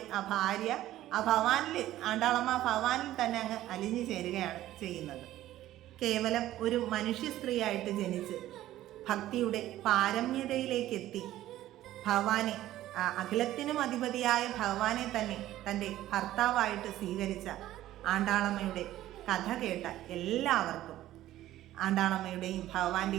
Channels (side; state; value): left; quieter; 14.2 dB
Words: ഭാര്യ ആണ്ടാളമ്മ ഭഗവാനിൽ തന്നെ അങ്ങ് അലിഞ്ഞു ചേരുകയാണ് ചെയ്യുന്നത്. കേവലം ഒരു മനുഷ്യ സ്ത്രീയായിട്ട് ജനിച്ച് ഭക്തിയുടെ പാരമ്യതയിലേക്കെത്തി ഭഗവാനെ, അഖിലത്തിനും അധിപതിയായ ഭഗവാനെ തന്നെ തൻ്റെ ഭർത്താവായിട്ട് സ്വീകരിച്ച ആണ്ടാളമ്മയുടെ കഥ കേട്ട എല്ലാവർക്കും ആണ്ടാളമ്മയുടെയും